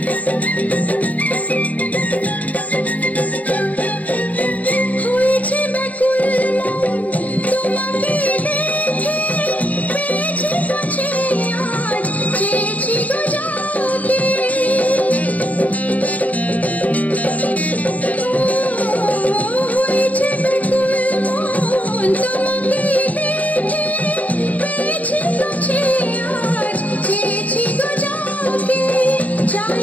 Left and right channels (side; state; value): right; late; 0.072 ms